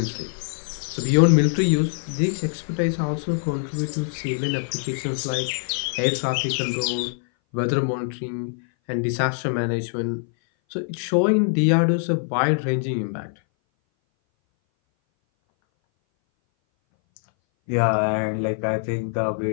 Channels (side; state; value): right; silent; 59 dB below the other